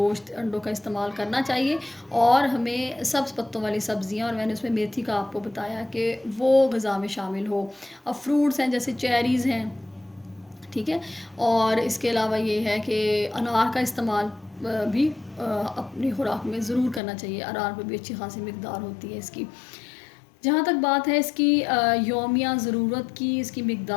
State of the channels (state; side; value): drops out; right; at 17.0 s